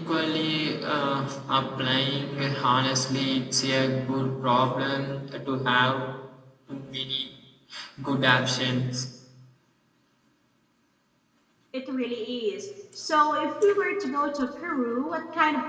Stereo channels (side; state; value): both; identical; correlation 1.00